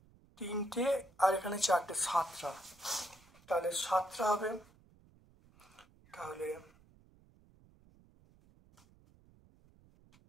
আর এখানে 4টে, 7টা। তাহলে 7টা হবে।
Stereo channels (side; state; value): right; noise; rumble, 28 dB below the sound